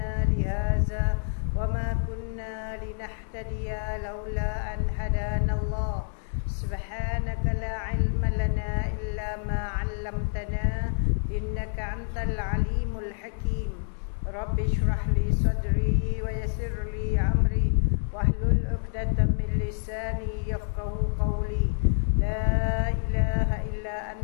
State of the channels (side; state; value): right; silent; digital silence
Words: lihaza wa ma kunna linahtadiya laula an hadana Allah. Subhanaka la ilma lana illa ma 'allamtana innaka antal alimul hakim. Rabbi shrah li sadri wa yassir li amri wahlul 'uqdatam min lisani yafqahu qawli. La ilaha illa